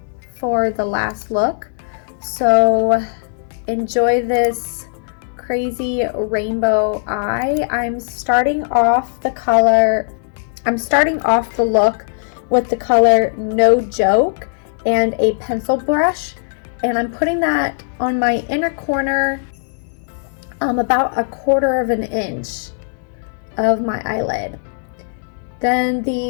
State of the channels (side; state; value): right; silent; digital silence